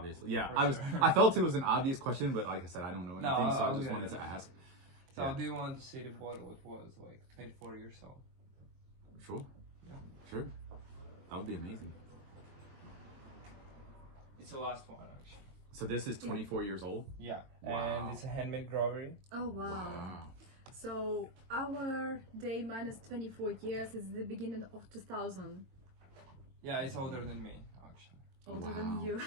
yeah. For sure. I felt it was an obvious question, but like I said, I don't know anything, so I just okay. wanted to ask. So Yeah. do you want to see the bottle? It was like 24 years old. Sure. Sure. That would be amazing. It's the last one actually. So this is 24 years old? Yeah, Wow. and it's a handmade grocery. Oh wow. Wow. So our day minus 24 years is the beginning of 2000. Yeah, it's older than me actually. Older Wow. than you.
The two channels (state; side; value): late; left; 22 ms